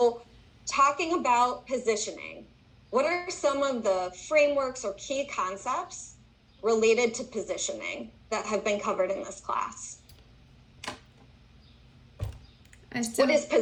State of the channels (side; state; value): both; identical; correlation 1.00